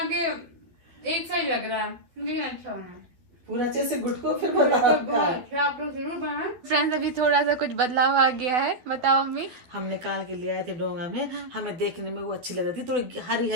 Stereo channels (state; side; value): late; left; 12 ms